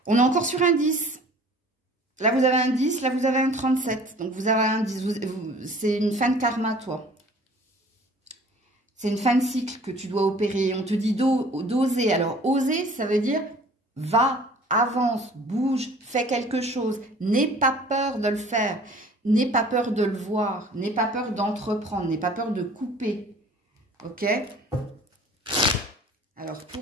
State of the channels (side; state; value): both; normal; correlation 0.49